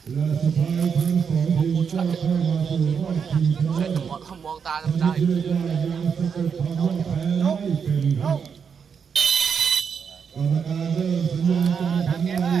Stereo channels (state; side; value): quieter; left; 6.6 dB